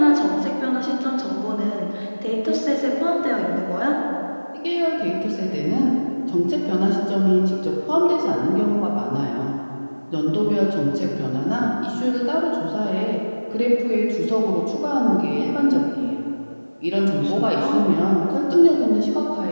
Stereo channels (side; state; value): both; inverted; correlation -1.00